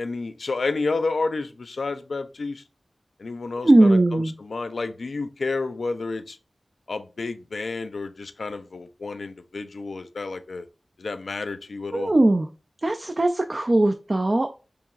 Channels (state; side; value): normal; both; correlation 0.97